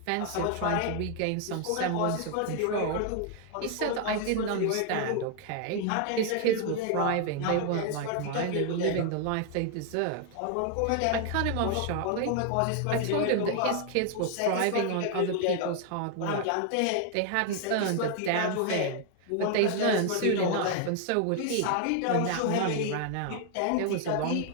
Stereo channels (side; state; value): both; different; correlation 0.00